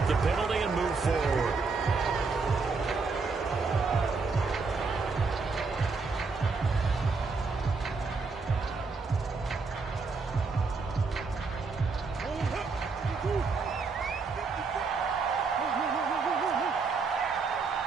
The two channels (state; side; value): quieter; left; 4.4 dB